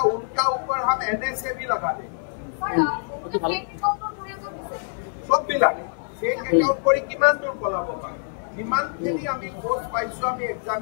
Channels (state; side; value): silent; right; digital silence